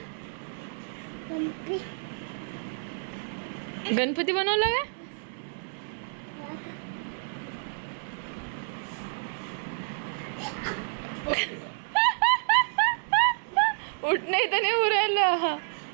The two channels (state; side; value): silent; left; digital silence